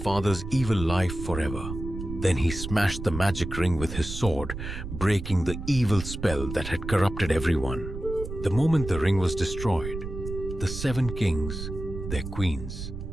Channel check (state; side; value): noise; right; rumble, 8 dB below the sound